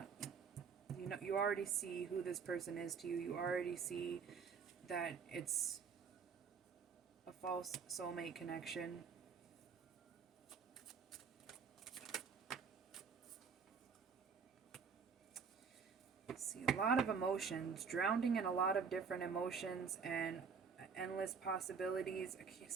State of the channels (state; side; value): quieter; left; 5.9 dB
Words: you already see who this person is to you. You already see that it's a false soulmate connection. See, a lot of emotions, drowning in a lot of different emotions and endless possibilities. I